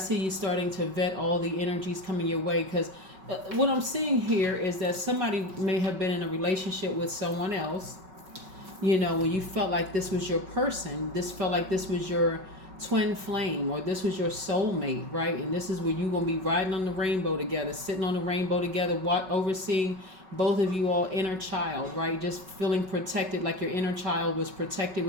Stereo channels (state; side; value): late; left; 5.3 ms